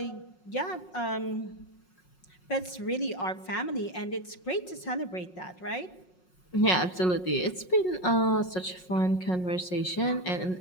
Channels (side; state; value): right; late; 5.5 ms